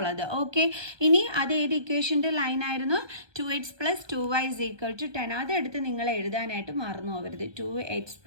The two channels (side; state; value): left; late; 1.2 ms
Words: ഓക്കെ, ഇനി അത് ഏത് ഇക്വേഷൻ്റെ ലൈനായിരുന്നു? 2x + 2y = 10. അതെടുത്ത് നിങ്ങൾ എഴുതാനായിട്ട് മറന്നു പോകരുത്. 2x